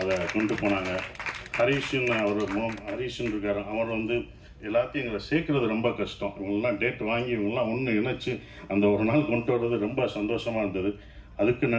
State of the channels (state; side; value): identical; both; correlation 1.00